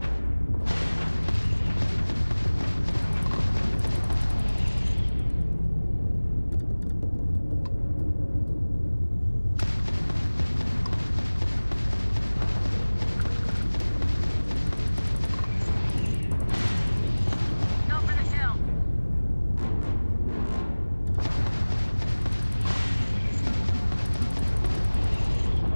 Go for the kill.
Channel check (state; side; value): inverted; both; correlation -1.00